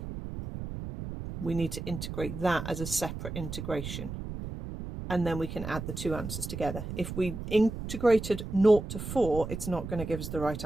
we need to integrate that as a separate integration, and then we can add the two answers together. If we integrated 0 to 4, it's not going to give us the right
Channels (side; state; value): right; noise; rumble, 7 dB below the sound